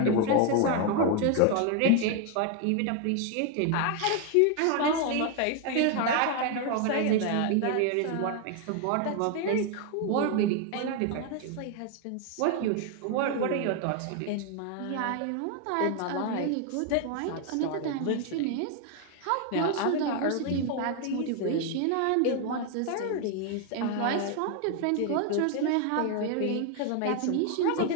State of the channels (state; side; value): different; both; correlation 0.01